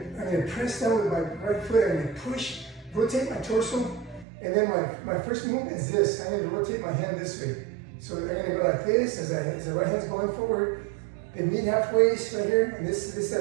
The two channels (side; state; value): left; drops out; at 4.2 s